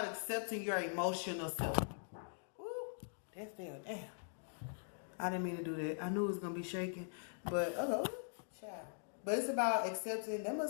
accepting your emotional self. Ooh, that's still damn. I didn't mean to do that. I knew it was gonna be shaking, but okay, child. But it's about accepting. That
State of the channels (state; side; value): silent; right; digital silence